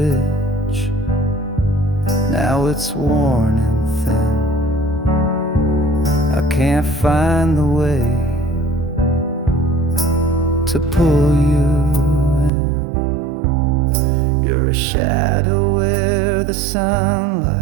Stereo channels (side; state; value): left; drops out; at 12.5 s